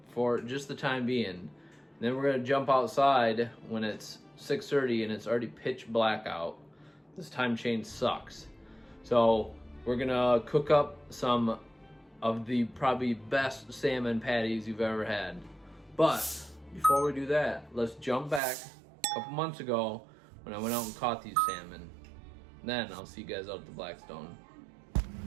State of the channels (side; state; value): left; drops out; at 18.4 s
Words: for just the time being. Then we're gonna jump outside when it's 6:30 and it's already pitch black out. This time change sucks. So we're gonna cook up some of the probably best salmon patties you've ever had. But before we do that, let's jump back a couple months ago when I went out and caught these salmon. Then I'll see you guys out at the Blackstone.